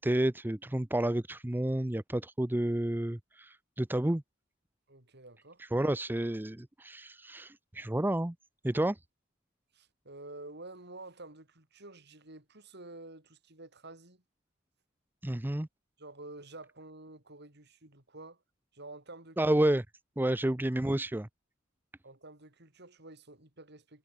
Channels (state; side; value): normal; both; correlation 0.91